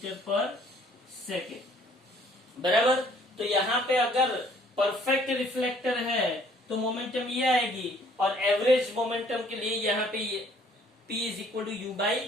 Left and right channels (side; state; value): both; normal; correlation 0.60